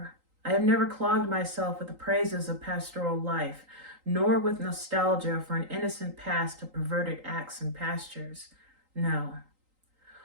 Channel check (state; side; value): late; left; 3.8 ms